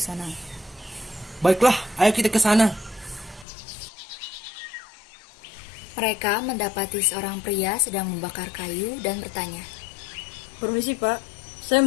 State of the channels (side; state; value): right; drops out; at 3.5 s